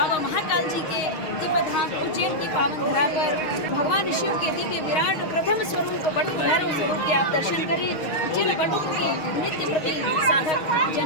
महाकाल जी के दिव्य धाम उज्जैन की पावन धरा पर भगवान शिव के दिव्य विराट प्रथम स्वरूप बटुक भैरव स्वरूप के आप दर्शन करें, जिन बटुक की नित्य प्रति साधक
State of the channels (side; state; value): right; late; 6.4 ms